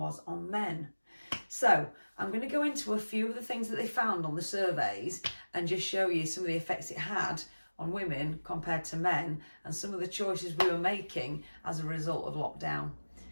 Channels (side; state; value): both; inverted; correlation -1.00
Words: on men? So I'm going to go into a few of the things that they found on the surveys and just show you some of the effects it had on women compared to men and some of the choices we were making as a result of lockdown.